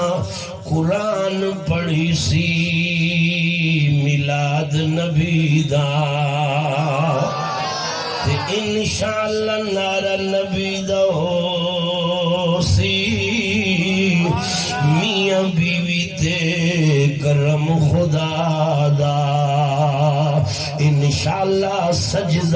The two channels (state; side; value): identical; both; correlation 1.00